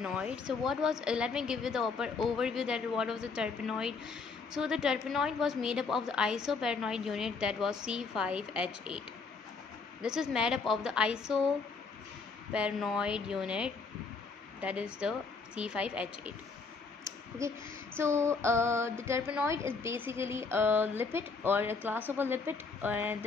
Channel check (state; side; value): quieter; right; 4.6 dB